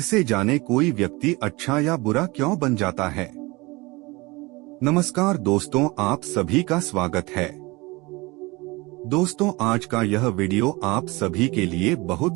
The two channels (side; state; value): left; quieter; 23.8 dB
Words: जाने कोई व्यक्ति अच्छा या बुरा क्यों बन जाता है। नमस्कार दोस्तों, आप सभी का स्वागत है। दोस्तों, आज का यह वीडियो आप सभी के लिए